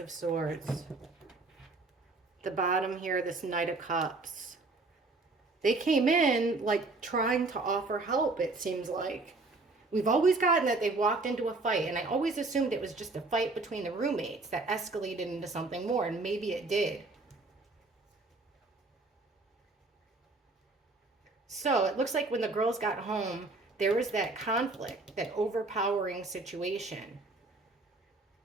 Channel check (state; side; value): quieter; left; 3.4 dB